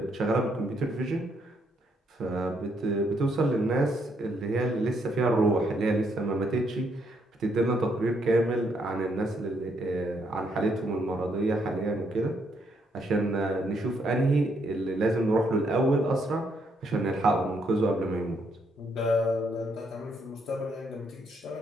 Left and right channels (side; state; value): both; normal; correlation 0.74